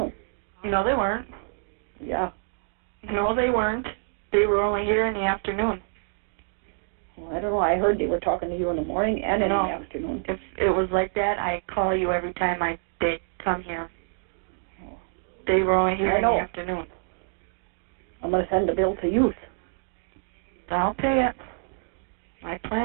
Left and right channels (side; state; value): left; silent; digital silence